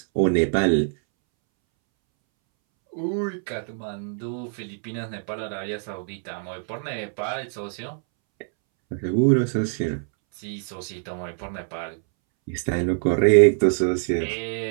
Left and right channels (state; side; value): silent; left; 62 dB below the other